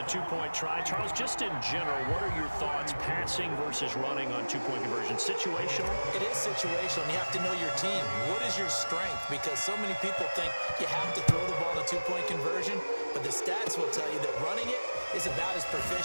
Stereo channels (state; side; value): inverted; both; correlation -1.00